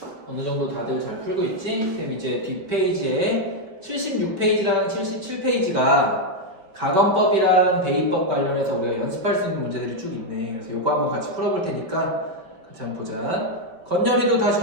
어느 정도 다들 잘 풀고 있지? 그럼 이제 뒷페이지에 76페이지랑 77페이지가 가건법이랑 대입법 관련해서 우리가 연습할 수 있는 문제들이 쭉 있네. 그래서 요거 한번 같이 풀어볼 테니까 같이 한번 보자. 건열이도 다시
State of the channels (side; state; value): left; late; 5.2 ms